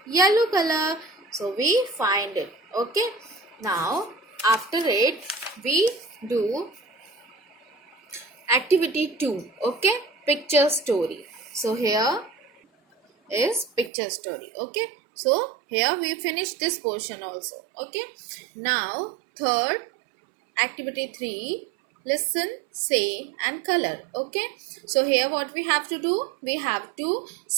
yellow color. So we find it. Okay. Now after it we do activity 2. Okay. Picture story. So here is picture story. Okay. So here we finish this portion also. Okay. Now third activity 3, listen, say and color. Okay. So here what we have to do, we have to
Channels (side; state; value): left; drops out; at 13.9 s